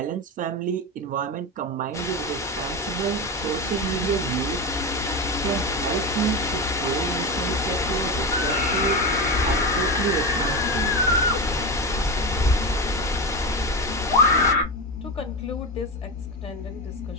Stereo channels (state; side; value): normal; both; correlation 0.18